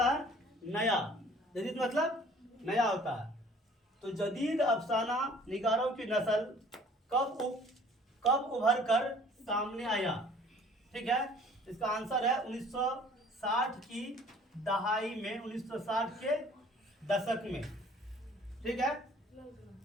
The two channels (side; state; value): both; normal; correlation 0.53